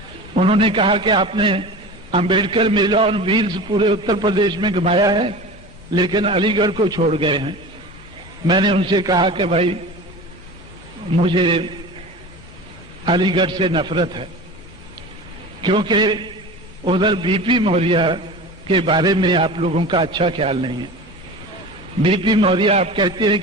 उन्होंने कहा कि आपने अंबेडकर मेला और व्हील्स पूरे उत्तर प्रदेश में घुमाया है, लेकिन अलीगढ़ को छोड़ गए हैं। मैंने उनसे कहा कि भाई मुझे अलीगढ़ से नफरत है, क्योंकि उधर बीपी मौर्य के बारे में आप लोगों का अच्छा ख्याल नहीं है। बीपी मौर्य आप कहते हैं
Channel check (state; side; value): normal; both; correlation 0.34